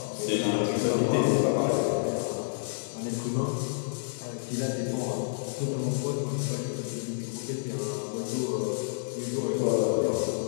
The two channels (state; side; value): silent; right; 56 dB below the other